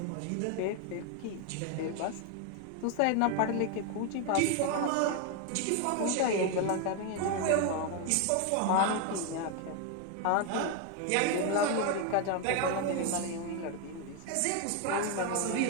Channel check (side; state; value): both; different; correlation 0.01